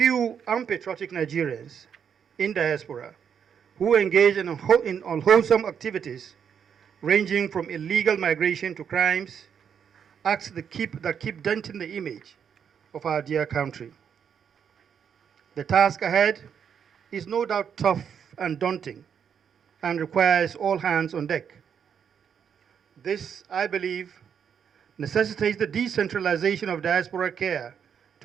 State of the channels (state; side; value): quieter; left; 7.7 dB